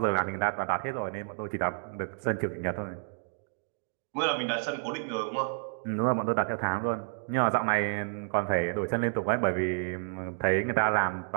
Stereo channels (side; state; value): left; silent; digital silence